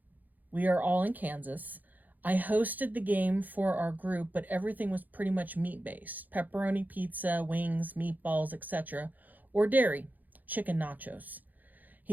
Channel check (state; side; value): late; left; 0.083 ms